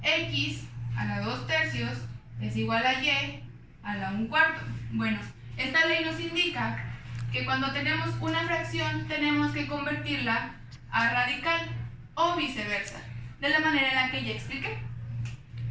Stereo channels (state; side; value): identical; both; correlation 1.00